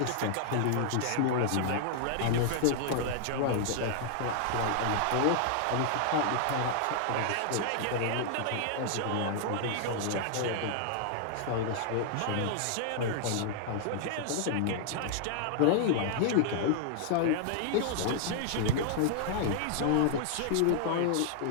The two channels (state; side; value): different; both; correlation 0.00